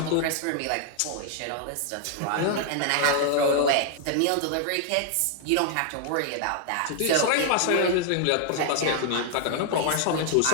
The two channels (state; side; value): different; both; correlation 0.00